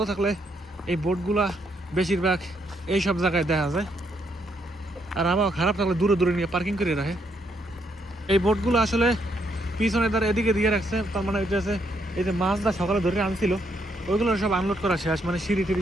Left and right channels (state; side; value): normal; both; correlation 0.75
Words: থাকলে এই বোটগুলা বেশিরভাগ এই সব জায়গায় দেখা যায়, আর আবহাওয়া খারাপ থাকলে দূরে দূরে নিয়ে পার্কিং করে রাখে। এই বোটগুলো আসলে পিছনে দ্বারা এদিকে দিয়ে রাখছে, তার মানে হইতেছে এই যে মাছটা সকালে ধরে আনছিল ওইগুলো সব আনলোড করা শেষ, মানে সিঁড়ি